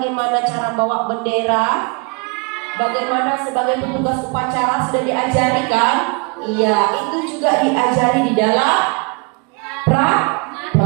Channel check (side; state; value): left; quieter; 33.6 dB